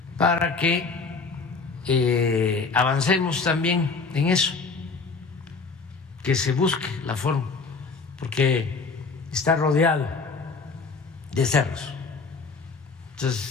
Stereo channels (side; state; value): right; quieter; 4.5 dB